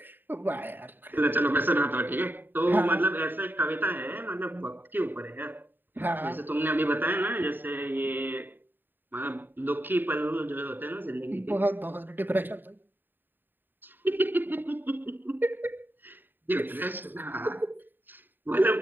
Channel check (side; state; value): left; late; 0.093 ms